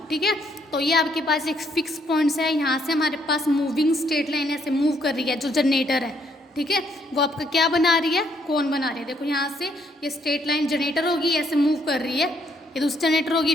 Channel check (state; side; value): normal; both; correlation 0.70